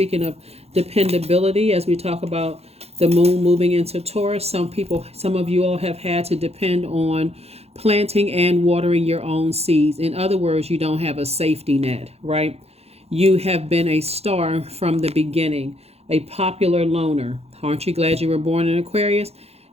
of dependability, as we talk about the moon moving into Taurus, some of you all have had to depend on planting and watering your own seeds. In other words, you don't have a safety net, right? You have been a star from the beginning, a popular loner. Aren't you glad you were born in Aquarius?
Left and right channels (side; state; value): left; late; 0.30 ms